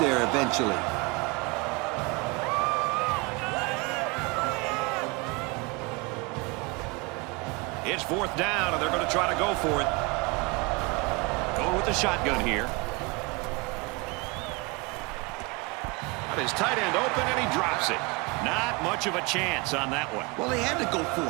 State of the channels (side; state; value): left; quieter; 27.4 dB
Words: eventually. It's fourth down, and they're going to try to go for it. Going with the shotgun here. Got his tight end open, and he drops it. Not much of a chance on that one. Well, they had to go for